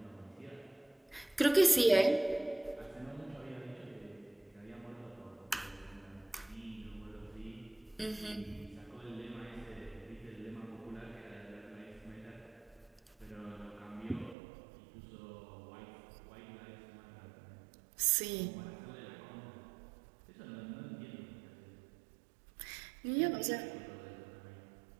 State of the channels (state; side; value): drops out; left; at 14.4 s